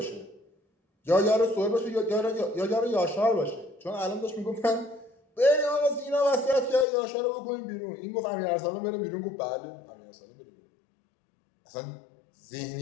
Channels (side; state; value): right; drops out; at 6.9 s